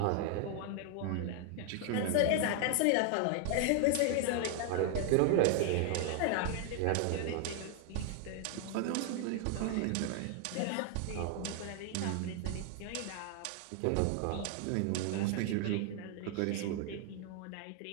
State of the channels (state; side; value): different; both; correlation 0.00